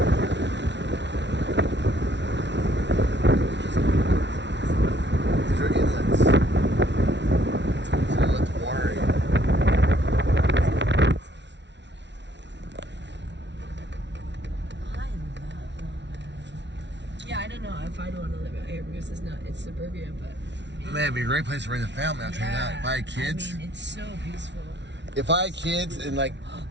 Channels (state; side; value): late; left; 0.51 ms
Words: These are inlets. So let the water in. Yeah, I don't know if I'd want to live out here because it's suburbia, but Man, it'd be a great place to raise a family, I'll tell you that. If I had kids. I mean, it's so peaceful. If I had kids and like.